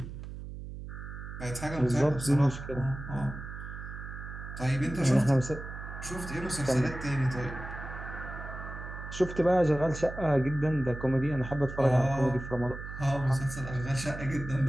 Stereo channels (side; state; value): right; noise; hum, 10 dB below the sound